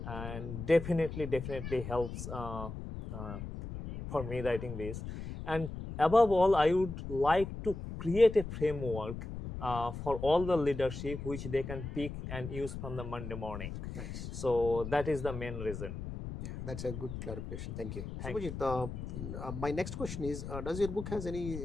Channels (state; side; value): noise; left; rumble, 8 dB below the sound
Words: and definitely helps for me writing this. And above all, I would like to create a framework for all the leadership which they can pick and use from the Monday morning. Nice. So that is the main reason. Yeah, that's a good clarification. Thank you. Thank you. Subhajit, my next question is, does your book has